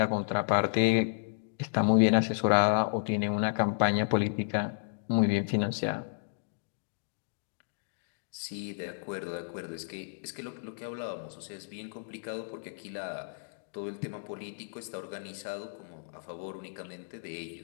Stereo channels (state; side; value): silent; right; digital silence